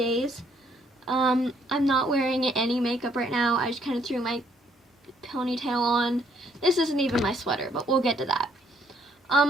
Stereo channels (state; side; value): normal; both; correlation 0.67